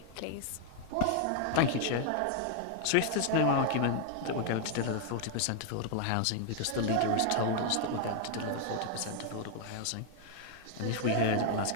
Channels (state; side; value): different; both; correlation 0.00